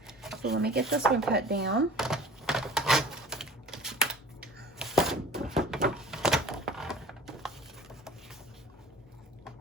So let me get this one cut down.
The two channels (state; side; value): normal; both; correlation 0.44